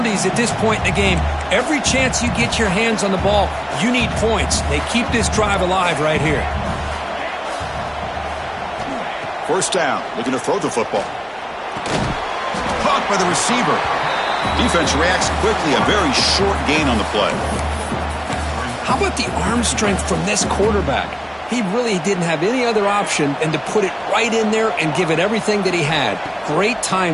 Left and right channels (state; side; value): identical; both; correlation 1.00